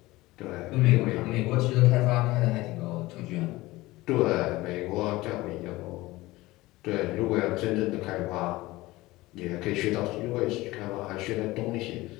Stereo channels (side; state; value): right; quieter; 19.3 dB